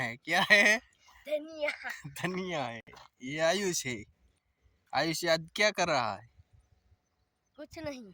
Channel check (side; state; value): both; identical; correlation 1.00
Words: क्या है धनिया धनिया है ये आयुष है आयुष आज क्या कर रहा है कुछ नहीं